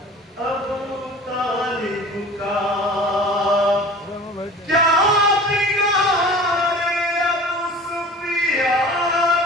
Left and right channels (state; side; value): normal; both; correlation 0.41